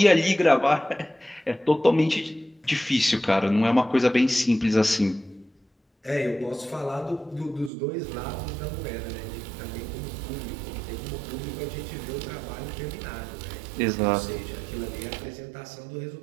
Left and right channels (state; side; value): drops out; left; at 7.7 s